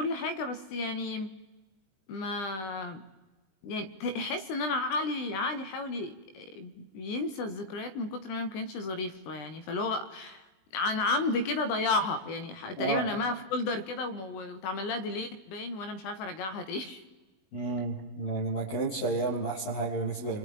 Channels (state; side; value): late; right; 20 ms